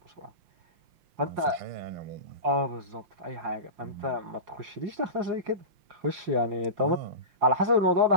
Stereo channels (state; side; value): late; left; 5.7 ms